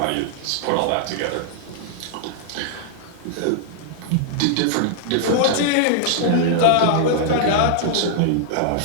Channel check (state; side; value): different; both; correlation -0.01